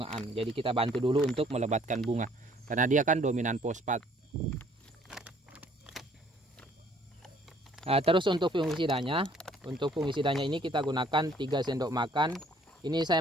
Jadi kita bantu dulu untuk melebatkan bunga karena dia kan dominan fosfat. Terus untuk fungisidanya ini kita gunakan 3 sendok makan. Ini saya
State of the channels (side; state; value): both; normal; correlation 0.60